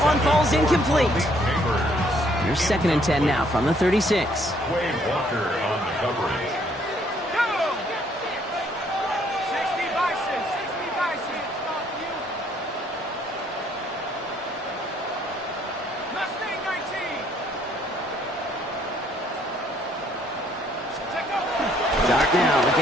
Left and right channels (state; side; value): normal; both; correlation 0.66